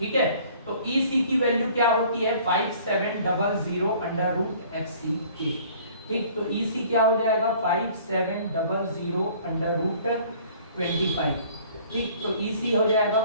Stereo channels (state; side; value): inverted; both; correlation -0.53